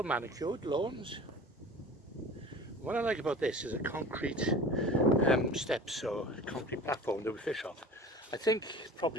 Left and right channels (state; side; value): normal; both; correlation 0.39